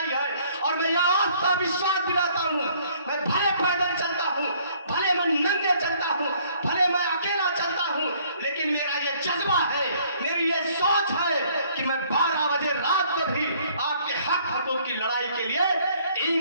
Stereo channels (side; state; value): both; inverted; correlation -0.61